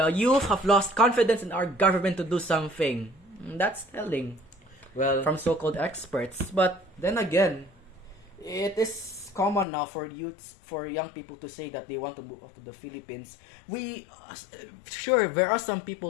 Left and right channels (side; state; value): right; drops out; at 9.7 s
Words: youth have lost confidence in our government to do something. That's telling Well, from so-called experts. But then again, it is common now for young people to say that they want to move out to the Philippines. Sure, there are some